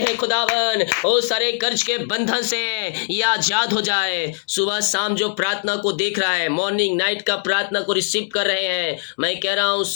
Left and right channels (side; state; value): right; silent; digital silence